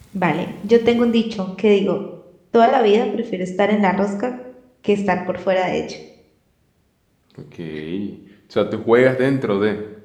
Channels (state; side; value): identical; both; correlation 1.00